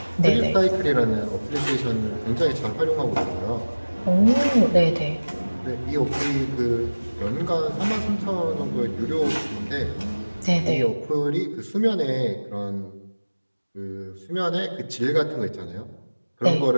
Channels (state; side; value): inverted; both; correlation -1.00